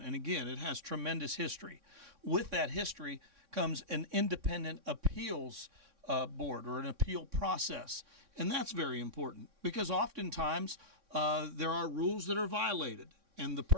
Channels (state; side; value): late; left; 3.6 ms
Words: And again, it has tremendous history. With that history comes an independent appeals board or an appeal process, and that's very important because oftentimes there are rules that are violated. And the